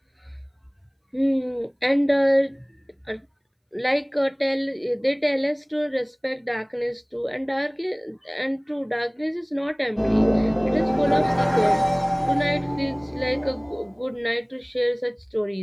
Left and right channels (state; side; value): identical; both; correlation 1.00